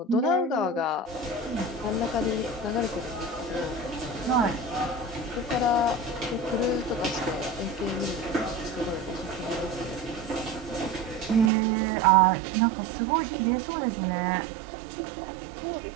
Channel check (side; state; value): left; drops out; at 11.5 s